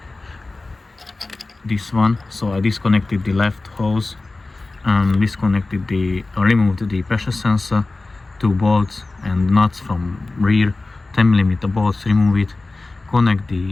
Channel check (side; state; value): right; quieter; 3.3 dB